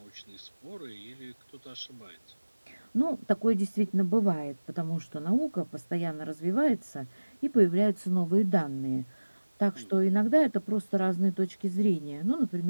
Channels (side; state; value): both; inverted; correlation -1.00